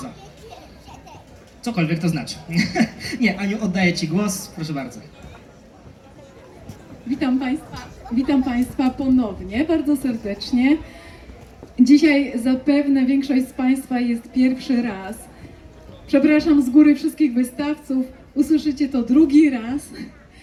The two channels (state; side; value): identical; both; correlation 1.00